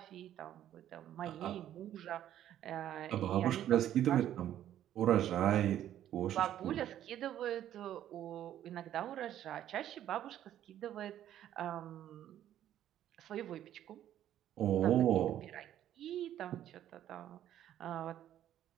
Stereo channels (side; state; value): left; quieter; 11.5 dB